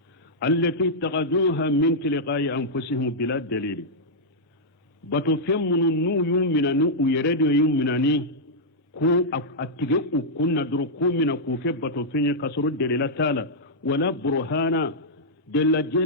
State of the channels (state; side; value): normal; both; correlation -0.08